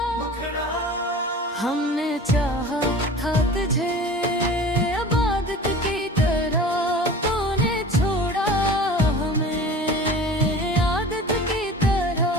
हमने चाहा था तुझे इबादत की तरह, तूने छोड़ा हमें आदत की तरह।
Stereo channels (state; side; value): normal; both; correlation 0.39